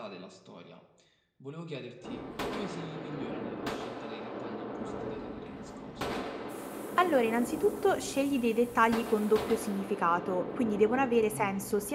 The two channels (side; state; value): both; identical; correlation 1.00